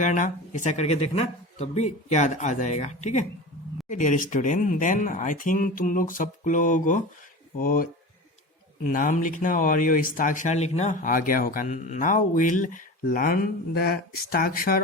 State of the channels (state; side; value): normal; both; correlation 0.31